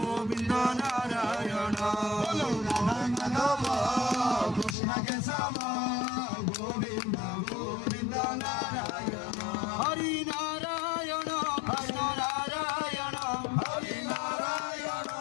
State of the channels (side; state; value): right; drops out; at 4.8 s